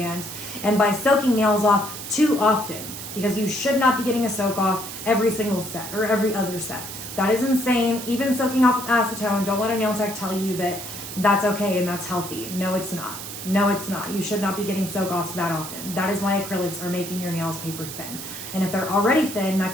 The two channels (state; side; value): noise; right; hiss, 9 dB below the sound